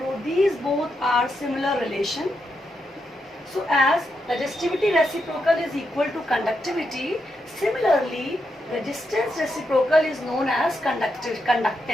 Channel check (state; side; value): normal; both; correlation 0.83